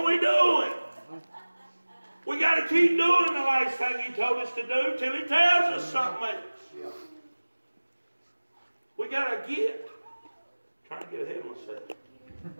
we doing? We got to keep doing the last thing He told us to do till He tells us something else. We got to get. Trying to get ahead of myself.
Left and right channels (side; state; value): both; inverted; correlation -1.00